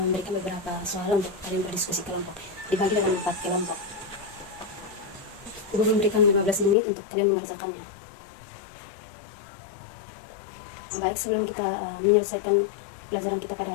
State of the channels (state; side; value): drops out; right; at 6.8 s